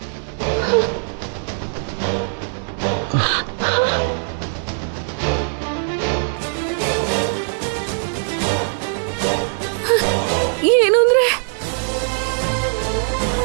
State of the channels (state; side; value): silent; left; 65 dB below the other